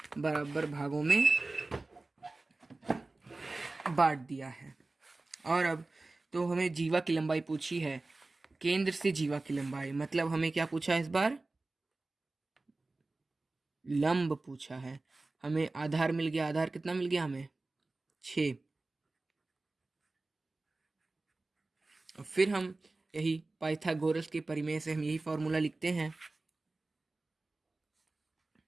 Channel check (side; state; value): left; quieter; 3.2 dB